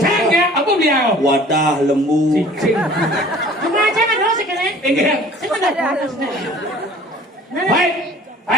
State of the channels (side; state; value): both; normal; correlation 0.49